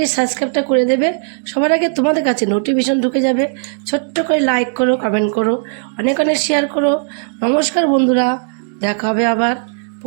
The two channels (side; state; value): left; silent; digital silence